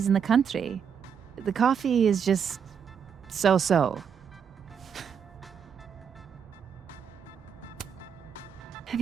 in the country. The coffee is just so-so. Have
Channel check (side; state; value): left; quieter; 7.3 dB